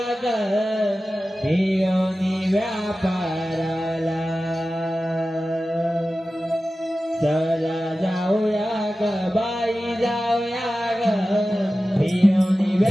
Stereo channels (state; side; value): normal; both; correlation 0.95